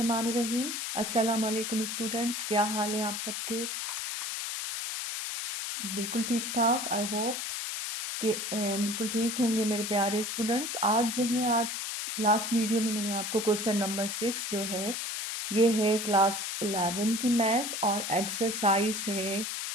अस्सलाम वालेकुम स्टूडेंट्स, क्या हाल है आप सबके? बिल्कुल ठीक ठाक। आई होप कि बिल्कुल ठीक होंगे मेरे प्यारे स्टूडेंट्स। आज लास्ट वीडियो में मैंने आपको क्वेश्चन नंबर 6 जो है ये है क्लास 11 की मैथ्स और एक्सरसाइज है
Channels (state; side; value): noise; left; hiss, 4 dB below the sound